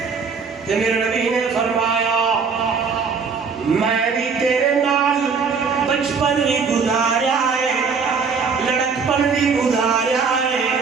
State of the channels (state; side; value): quieter; left; 5.4 dB